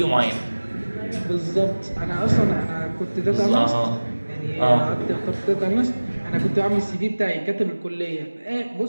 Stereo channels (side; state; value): both; inverted; correlation -1.00